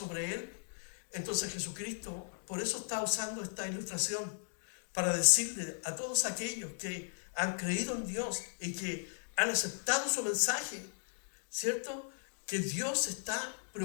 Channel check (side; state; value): right; silent; digital silence